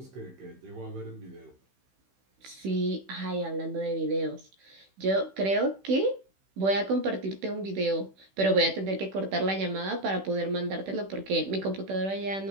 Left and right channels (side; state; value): left; late; 16 ms